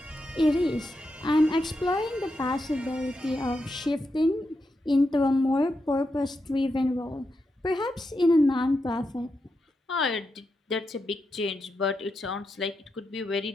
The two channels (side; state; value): both; normal; correlation 0.86